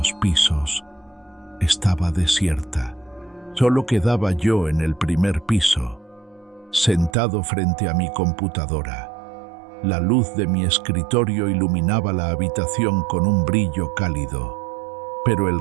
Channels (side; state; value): left; drops out; at 7.2 s